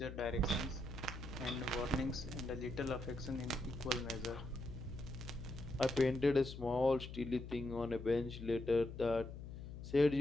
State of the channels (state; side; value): noise; left; hum, 10 dB below the sound